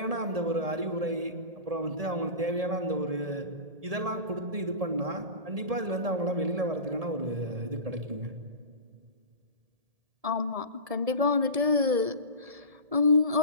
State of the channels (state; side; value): late; left; 1.7 ms